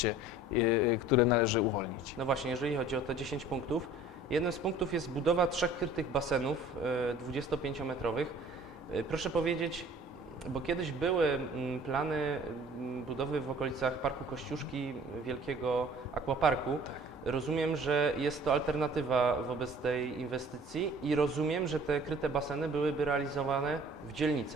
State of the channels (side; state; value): both; normal; correlation 0.50